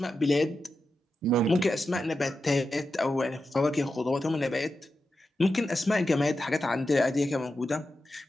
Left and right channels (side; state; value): both; normal; correlation 0.90